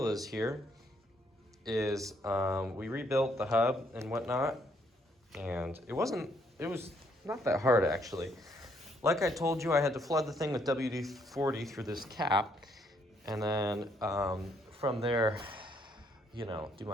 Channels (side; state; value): both; normal; correlation 0.70